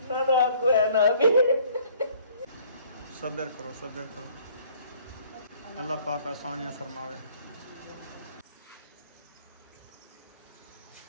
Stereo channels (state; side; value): inverted; both; correlation -0.57